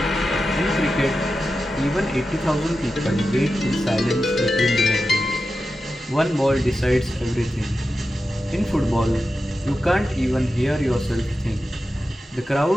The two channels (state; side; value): normal; both; correlation 0.91